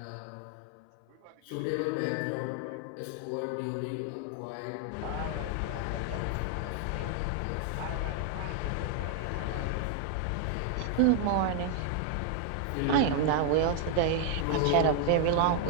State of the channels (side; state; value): both; different; correlation 0.00